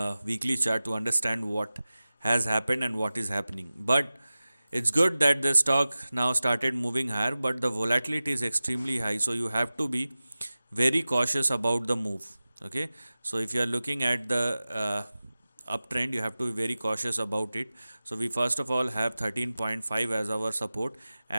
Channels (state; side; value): inverted; both; correlation -0.97